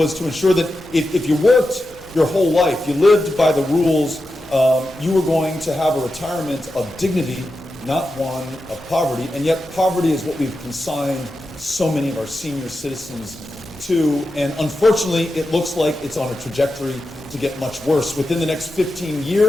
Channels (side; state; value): left; noise; hum, 25 dB below the sound